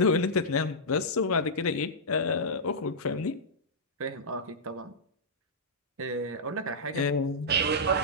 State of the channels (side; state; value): both; normal; correlation -0.11